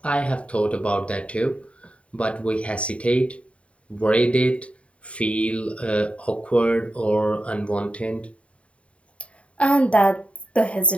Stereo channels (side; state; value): right; late; 0.063 ms